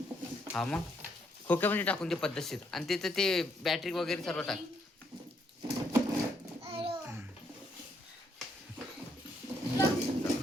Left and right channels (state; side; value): normal; both; correlation 0.74